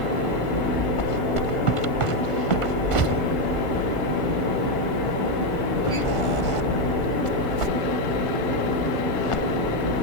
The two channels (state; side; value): late; right; 1.5 ms